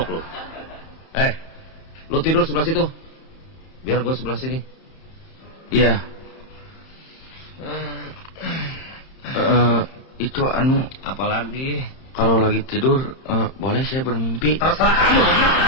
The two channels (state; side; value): late; right; 31 ms